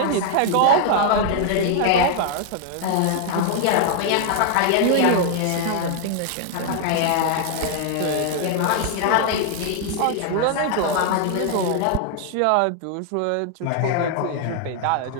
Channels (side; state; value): both; different; correlation 0.00